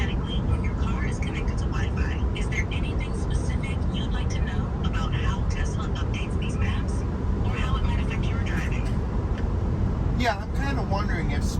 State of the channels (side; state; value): both; identical; correlation 1.00